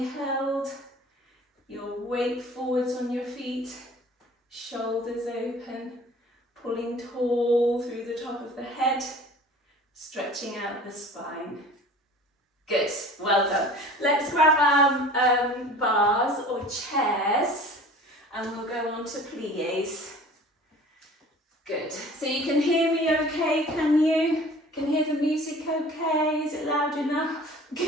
held, your weight forwards on your feet, shoulders open, pulling tall through the top of the head, stretching out the spine. Good, well done. Let's grab our bars or chairs and we'll go on to pliés. Good, so you can hear me okay, can you? Can hear the music okay? Is it loud enough?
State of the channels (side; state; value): both; normal; correlation 0.45